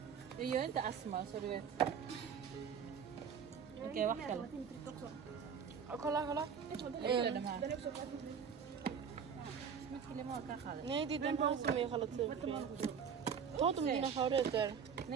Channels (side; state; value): left; quieter; 7.0 dB